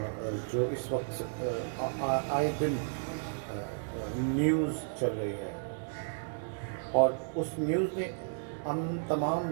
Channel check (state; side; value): silent; left; digital silence